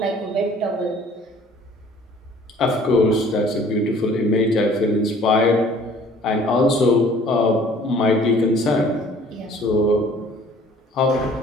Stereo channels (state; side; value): normal; both; correlation 0.53